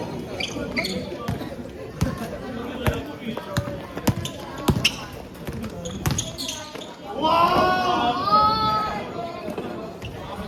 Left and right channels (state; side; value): identical; both; correlation 1.00